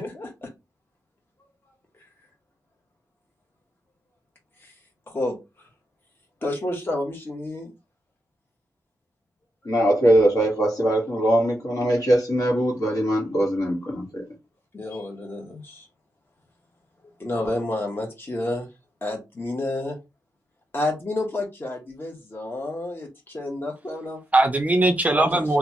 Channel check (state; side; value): normal; both; correlation 0.85